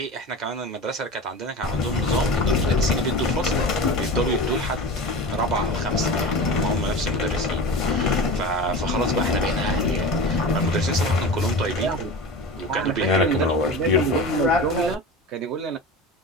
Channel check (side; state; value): both; normal; correlation 0.30